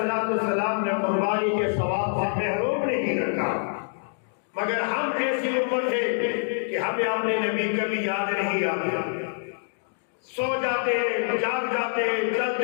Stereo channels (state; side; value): silent; right; digital silence